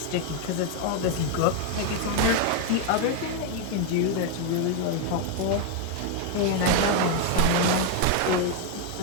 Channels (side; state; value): both; different; correlation 0.01